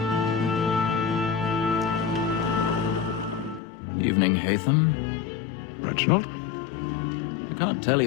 Evening, Hatham. Reginald? I can't tell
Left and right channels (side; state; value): right; drops out; at 3.6 s